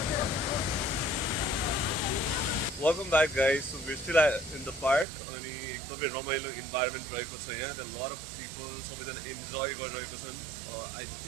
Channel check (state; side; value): drops out; left; at 5.1 s